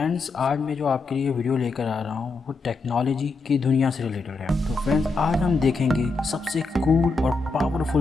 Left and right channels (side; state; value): right; quieter; 3.8 dB